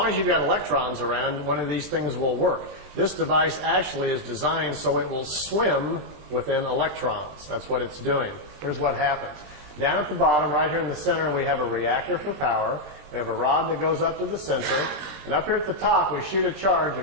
as you've got electrons around, one of these things will work. This device actually is designed so it will swim within electrons. That's what it's doing. Here's what happens. Down at the bottom, right here in the center, we have a reactor for power. We have a rod that goes up to the center. And up here at the top, we shoot a charge, a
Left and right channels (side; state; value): left; late; 20 ms